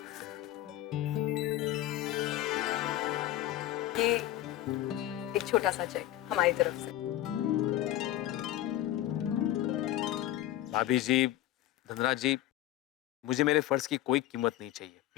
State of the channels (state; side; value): quieter; right; 14.0 dB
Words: ये एक छोटा सा चेक हमारी तरफ से। भाभी जी, धनराज जी, मुझे मेरे फर्ज की कोई कीमत नहीं चाहिए,